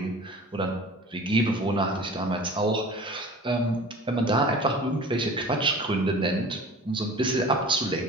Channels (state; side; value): normal; both; correlation 0.41